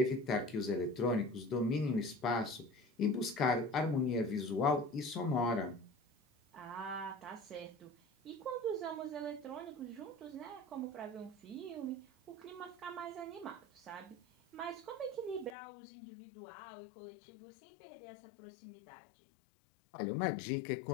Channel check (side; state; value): right; drops out; at 15.6 s